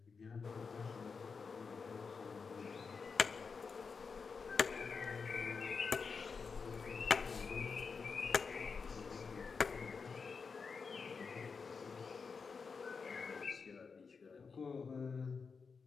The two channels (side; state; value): right; quieter; 5.2 dB